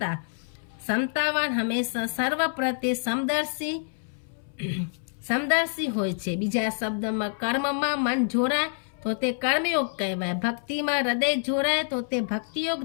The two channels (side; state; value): right; silent; 60 dB below the other